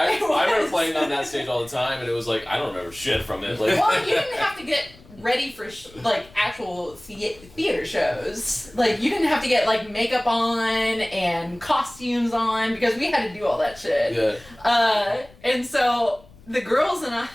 It remember was. playing on that stage all the time, and it was like, I don't remember shit from it. Like, well, you didn't have to get ready for like actual theater shows. Like you didn't have to get like makeup on and costumes on because we had to do all that shit. Yeah. And so the girls and I,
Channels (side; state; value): left; noise; rumble, 24 dB below the sound